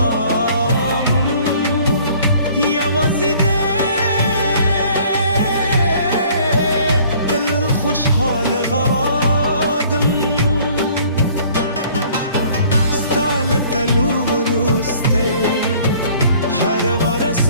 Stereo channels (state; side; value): inverted; both; correlation -0.55